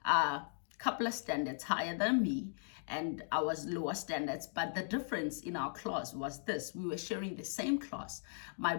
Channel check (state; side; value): silent; right; digital silence